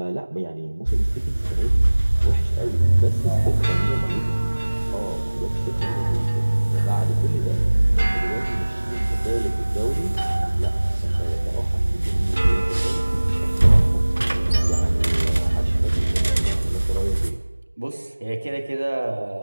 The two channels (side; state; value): both; inverted; correlation -1.00